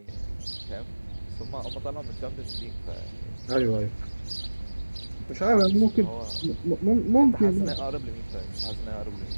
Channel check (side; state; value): both; inverted; correlation -1.00